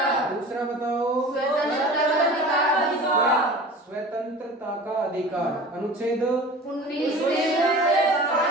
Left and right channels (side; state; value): both; normal; correlation 0.39